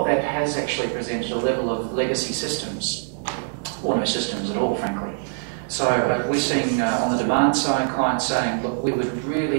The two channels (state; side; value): silent; left; digital silence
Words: that has actually presented a level of legacy systems, or no systems at all, frankly. So we're seeing on the demand side clients saying, look, we would